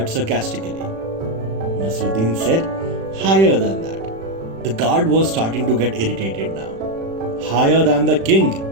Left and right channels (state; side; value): late; left; 36 ms